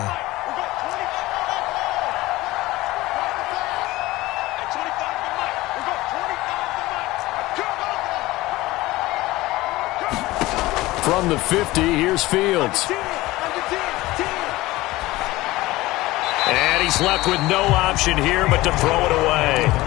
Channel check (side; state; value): right; quieter; 18.8 dB